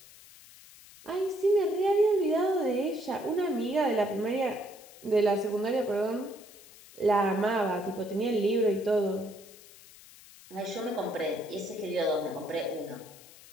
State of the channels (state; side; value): noise; left; hiss, 21 dB below the sound